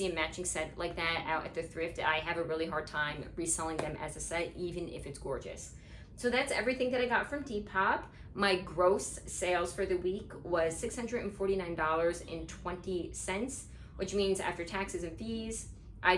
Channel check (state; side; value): identical; both; correlation 1.00